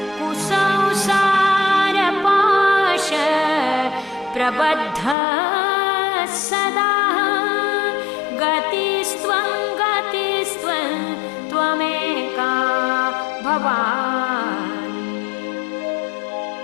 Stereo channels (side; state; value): right; drops out; at 5.2 s